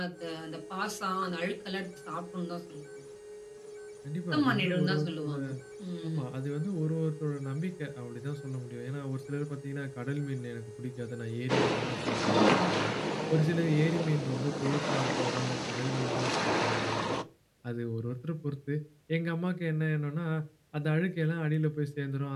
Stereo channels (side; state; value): both; identical; correlation 1.00